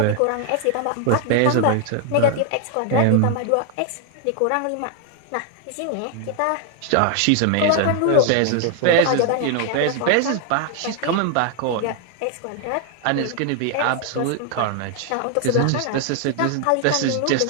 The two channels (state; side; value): different; both; correlation 0.01